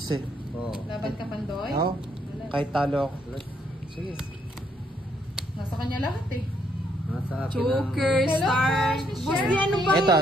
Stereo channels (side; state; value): both; normal; correlation 0.72